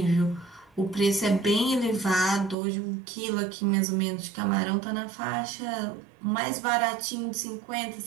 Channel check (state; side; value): drops out; left; at 2.6 s